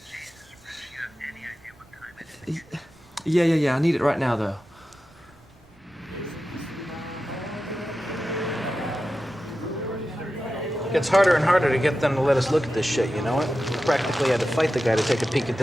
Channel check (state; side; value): noise; right; rumble, 28 dB below the sound